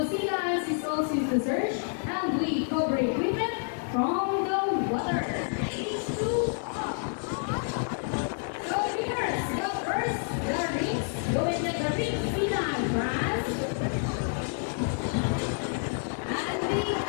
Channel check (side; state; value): right; silent; 59 dB below the other